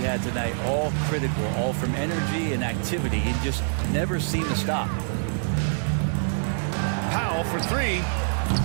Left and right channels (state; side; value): silent; left; 61 dB below the other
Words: had tonight, all critical, all from energy and activity. He just never seemed to stop. Powell for 3.